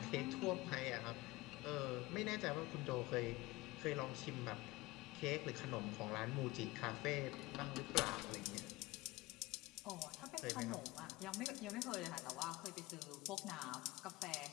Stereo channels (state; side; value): quieter; right; 21.0 dB